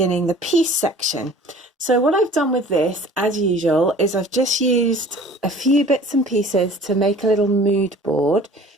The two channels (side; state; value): both; normal; correlation 0.47